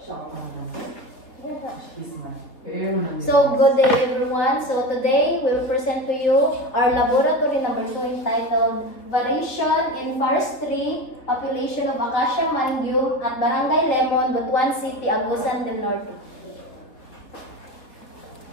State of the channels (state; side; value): late; right; 3.5 ms